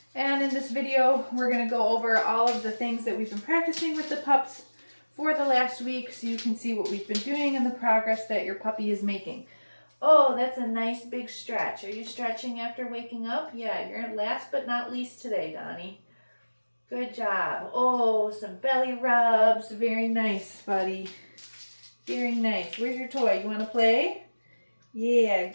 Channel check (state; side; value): inverted; both; correlation -1.00